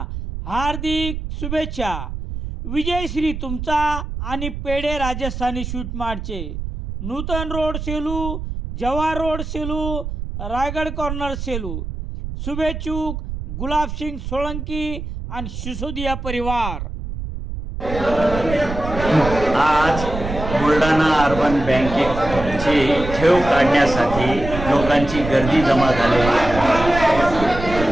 हार्दिक शुभेच्छा. विजयश्री तुमचा आणि पेढे राजस्थानी स्वीट मार्टचे. Nutan road Selu, Jawahar road Selu, Raigad corner Selu. शुभेच्छुक गुलाबसिंग सोळंकी आणि सिसोदिया परिवार. आज बुलढाणा अर्बन बँकेची ठेव काढण्यासाठी लोकांची गर्दी जमा झाली.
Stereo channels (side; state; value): right; noise; rumble, 6 dB below the sound